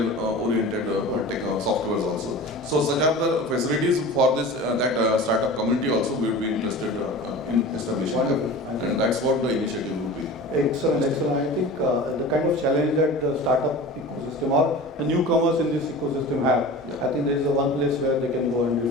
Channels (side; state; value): both; normal; correlation 0.36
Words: oriented softwares also. So such are the facilities for this that startup community also we will be interested in establishing, and that's what the initiative would be. Excellent. I think the kind of challenge that the startup ecosystem or the newcomers in this ecosystem have, I think there is one place where they can go and